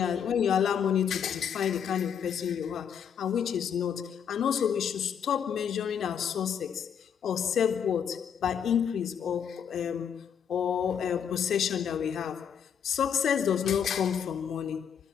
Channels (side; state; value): right; quieter; 7.9 dB